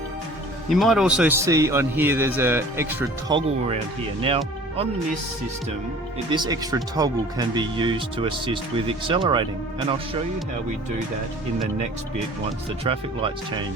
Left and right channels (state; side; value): normal; both; correlation 0.47